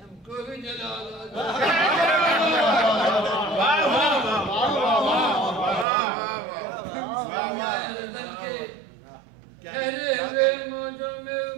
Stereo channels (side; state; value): left; drops out; at 5.9 s